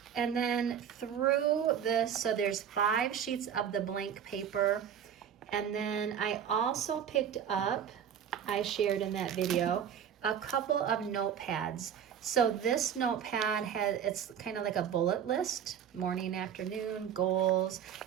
And then through this, so there's 5 sheets of the blank paper. And then I also picked up, I shared in that video, a couple of notepads. So this notepad it's kind of like a bullet list, morning, afternoon, goals.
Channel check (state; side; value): quieter; left; 8.6 dB